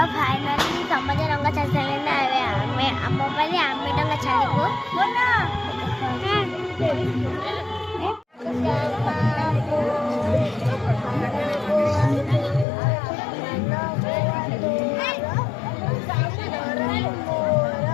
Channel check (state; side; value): drops out; right; at 12.7 s